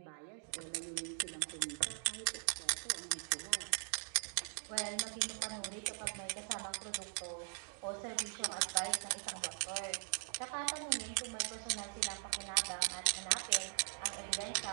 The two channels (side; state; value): left; silent; 51 dB below the other